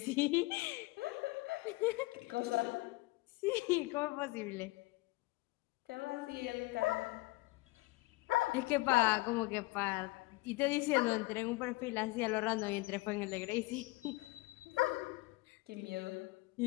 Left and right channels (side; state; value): right; quieter; 21.8 dB